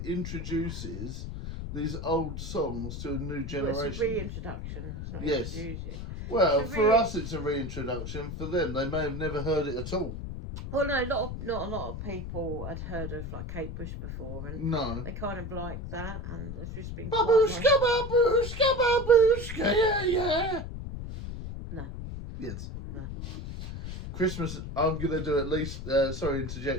introduces these old songs to a new generation. Well, it's a reintroduction. It's not introducing. Well, for us it's a reintroduction. For them, they may have never heard it at all. Well, no, not a lot of people had heard of like Kate Bush before, and no, they kind of like that, and it's just been babushka, babushka, babushka, yeah. No. Yes. No. Christmas, I'm going to do at least, sorry,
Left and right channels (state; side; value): noise; left; rumble, 7 dB below the sound